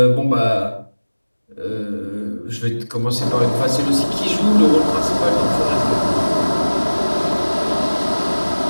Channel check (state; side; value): inverted; both; correlation -1.00